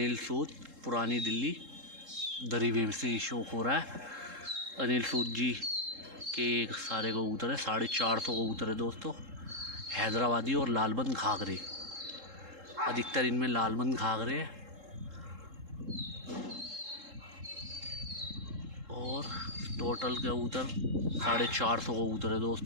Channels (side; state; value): left; late; 3.7 ms